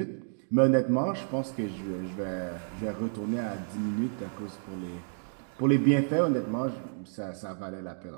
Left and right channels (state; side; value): silent; left; digital silence